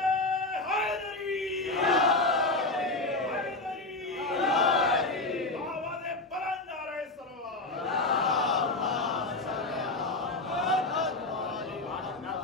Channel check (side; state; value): right; quieter; 3.0 dB